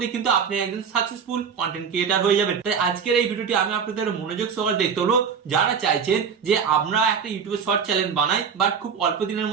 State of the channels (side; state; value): left; quieter; 6.6 dB